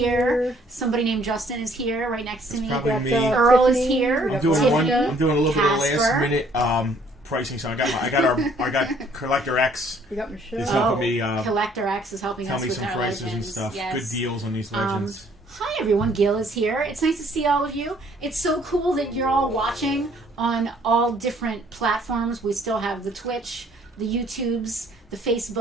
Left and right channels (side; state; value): both; normal; correlation 0.61